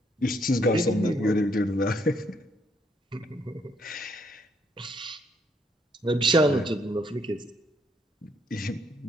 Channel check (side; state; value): both; normal; correlation 0.71